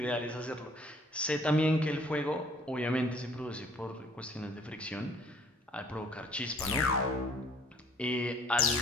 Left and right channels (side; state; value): both; normal; correlation 0.57